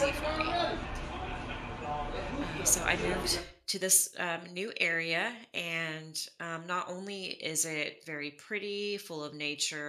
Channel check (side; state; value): both; identical; correlation 1.00